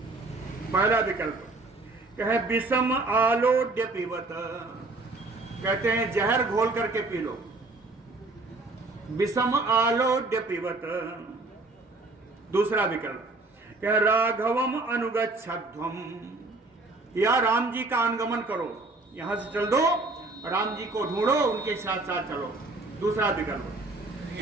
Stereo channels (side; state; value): left; quieter; 3.2 dB